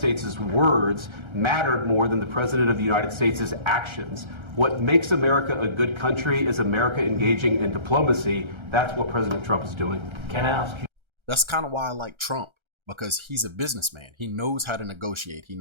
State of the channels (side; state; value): left; late; 1.3 ms